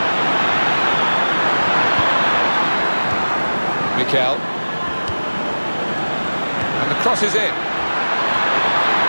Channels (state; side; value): inverted; both; correlation -1.00